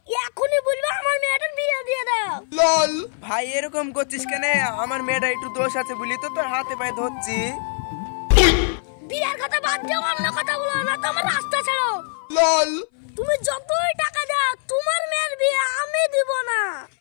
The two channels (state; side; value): silent; right; 60 dB below the other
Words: এখনই বলবো আমার মেয়েটার বিয়ে দিয়ে দাও। লল ভাই এরকম করছিস কেন? আমার মেয়েটা একটু দোষ আছে বলি তো তোর হাতে পায়ে ধরছি। বিয়ের কথা বাদ দাও, অন্য কথা বলো না, তোমার রাস্তা ছাড়ো। লল তুমি যতই টাকা দাও তোমার মেয়ের বিয়ে আমি দিব না।